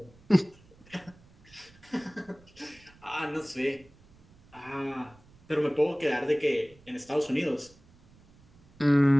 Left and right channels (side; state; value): right; noise; rumble, 27 dB below the sound